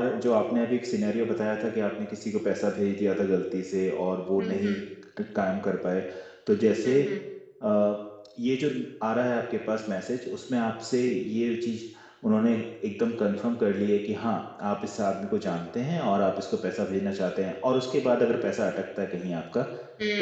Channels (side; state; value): both; identical; correlation 1.00